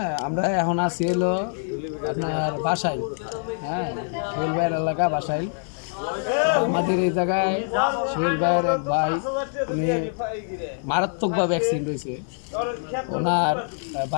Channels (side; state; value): right; silent; digital silence